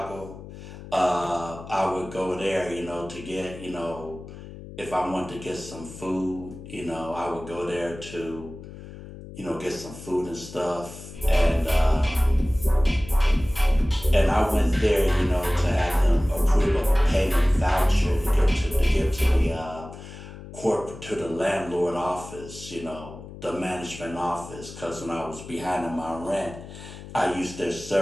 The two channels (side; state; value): left; noise; hum, 14 dB below the sound